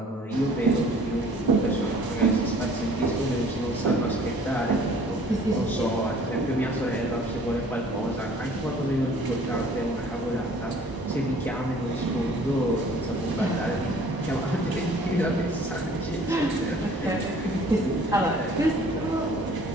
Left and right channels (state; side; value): normal; both; correlation 0.53